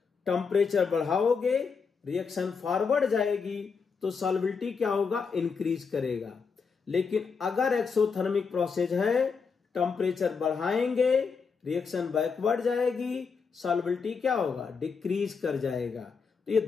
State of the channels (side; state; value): right; quieter; 5.5 dB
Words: टेम्परेचर बढ़ाओगे, रिएक्शन फॉरवर्ड जाएगी तो सॉल्युबिलिटी क्या होगा, इंक्रीज करेगा। लेकिन अगर एक्सोथर्मिक प्रोसेस है, टेम्परेचर बढ़ाएंगे, रिएक्शन बैकवर्ड जाएगी, सॉल्युबिलिटी क्या होगा, डिक्रीज कर जाएगा। तो ये